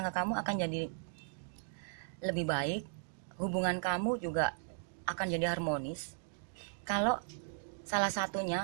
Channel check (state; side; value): silent; left; digital silence